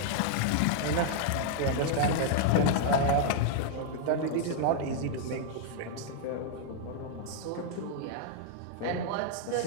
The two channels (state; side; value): different; both; correlation -0.01